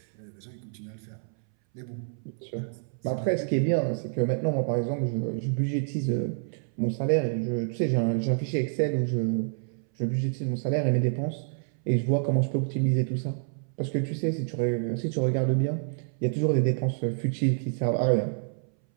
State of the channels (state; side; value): silent; left; 59 dB below the other